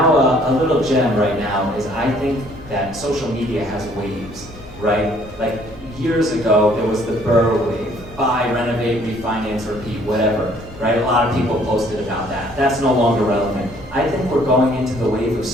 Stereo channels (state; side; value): normal; both; correlation 0.61